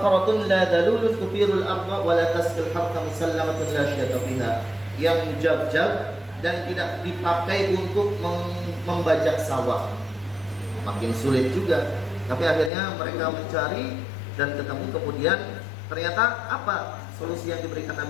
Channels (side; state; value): right; drops out; at 12.7 s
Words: la dalulun tuthirul arda wa la tasqil harta musallamatun la syata fiha. Yang jab-jab dan tidak dipakai untuk membajak sawah. Makin sulit juga. Tapi akhirnya mereka mencari dan ketemu, kemudian ternyata apa solusi yang diberikan